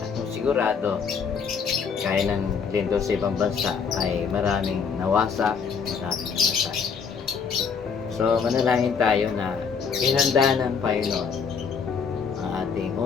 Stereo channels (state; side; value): quieter; right; 6.1 dB